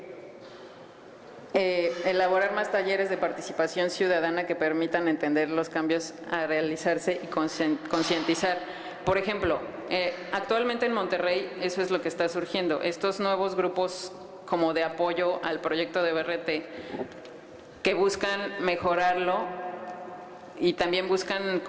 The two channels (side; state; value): both; identical; correlation 1.00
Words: elaborar más talleres de participación ciudadana que permitan entender los cambios a realizarse y concientizar. Por ejemplo, actualmente en Monterrey eso es lo que está surgiendo. Estos nuevos grupos como de apoyo al proyecto de BRT que buscan mejorarlo y también buscan